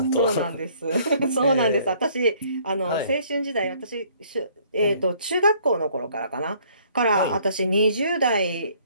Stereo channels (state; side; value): inverted; both; correlation -0.61